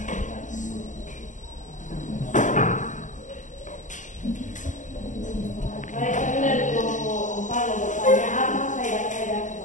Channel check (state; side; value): late; right; 0.37 ms